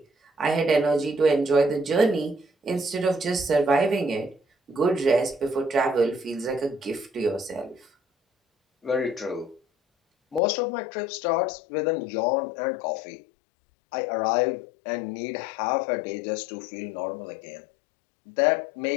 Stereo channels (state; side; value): drops out; right; at 10.4 s